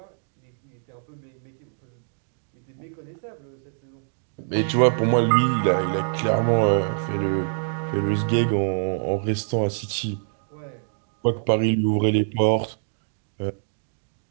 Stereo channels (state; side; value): silent; left; digital silence